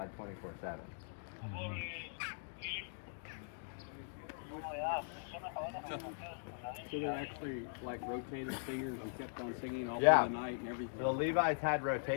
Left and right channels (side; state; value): right; silent; digital silence